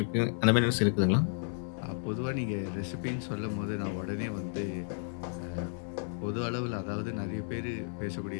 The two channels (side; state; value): right; silent; digital silence